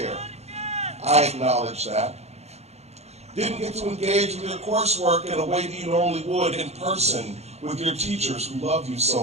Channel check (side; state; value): left; late; 0.31 ms